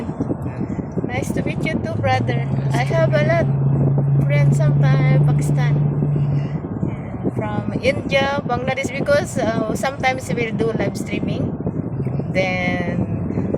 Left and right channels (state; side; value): identical; both; correlation 1.00